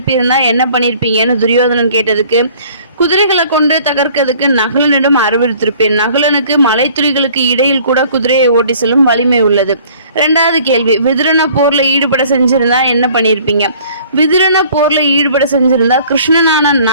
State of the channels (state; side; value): inverted; both; correlation -0.53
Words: என்ன பண்ணிருப்பீங்கன்னு துரியோதனன் கேட்டதுக்கு, குதிரைகளை கொண்டு தகர்க்கிறதுக்கு நகுலனிடம் அறிவுறுத்திருப்பேன். நகுலனுக்கு மலைத்துளிகளுக்கு இடையில் கூட குதிரையை ஓட்டி செல்லும் வலிமை உள்ளது. 2வது கேள்வி, விதுரனை போர்ல ஈடுபட செஞ்சிருந்தா என்ன பண்ணிருப்பீங்க? விதுரனை போர்ல ஈடுபட செஞ்சிருந்தா கிருஷ்ணனான